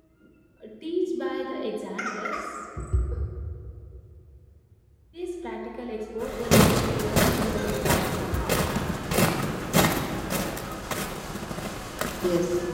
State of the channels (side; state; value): both; identical; correlation 1.00